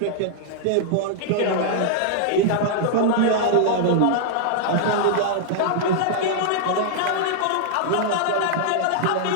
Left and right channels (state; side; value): different; both; correlation -0.01